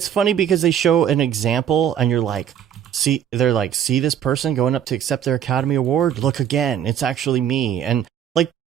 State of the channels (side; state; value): left; quieter; 9.4 dB